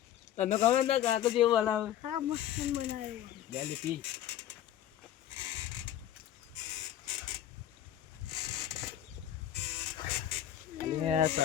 તને ખબર ને કાકો જેવું બનાવે. હા મસ્ત બનાવ્યો. ગાલી પી.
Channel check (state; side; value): quieter; right; 11.5 dB